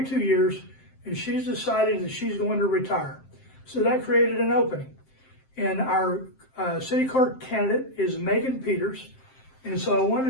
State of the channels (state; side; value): late; right; 7.6 ms